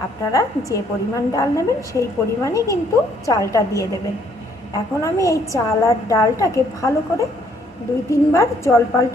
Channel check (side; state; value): both; normal; correlation 0.66